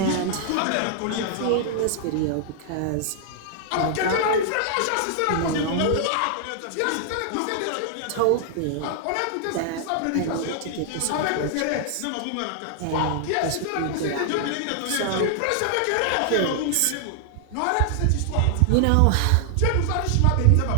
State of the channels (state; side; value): different; both; correlation 0.00